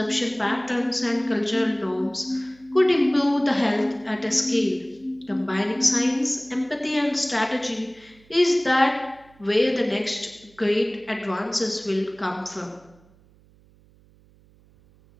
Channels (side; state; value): right; noise; hum, 29 dB below the sound